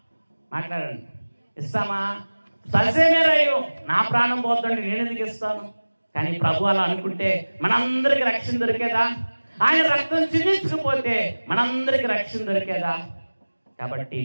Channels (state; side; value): inverted; both; correlation -1.00